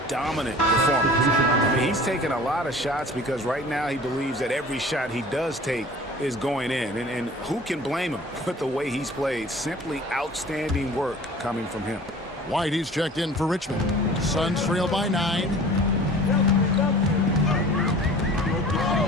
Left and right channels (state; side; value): normal; both; correlation 0.44